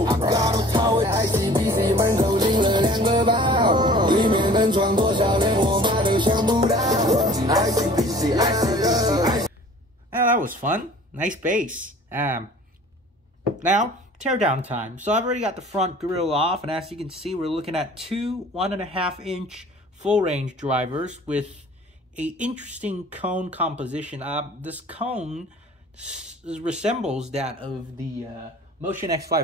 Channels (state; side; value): normal; both; correlation 0.48